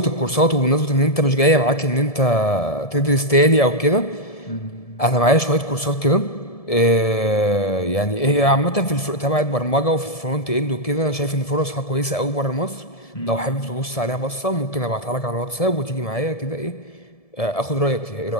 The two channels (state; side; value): late; right; 1.7 ms